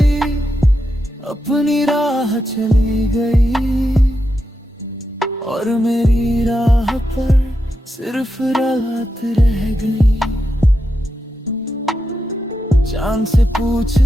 अपनी राह चली गई, और मेरी राह पर सिर्फ रात रह गई। चांद से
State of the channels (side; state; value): both; normal; correlation 0.86